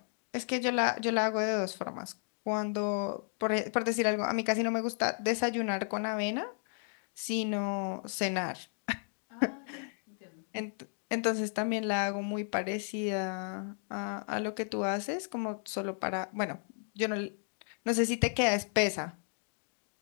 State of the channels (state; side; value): silent; right; 55 dB below the other